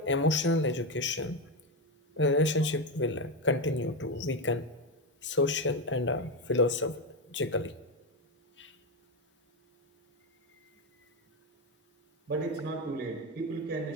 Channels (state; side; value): normal; both; correlation 0.11